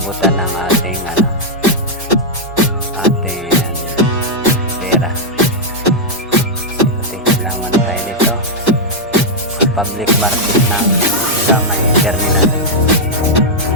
ng ating pera. Kailangan tayo dito sa public market ng Gamay Terminal,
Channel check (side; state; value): both; normal; correlation -0.04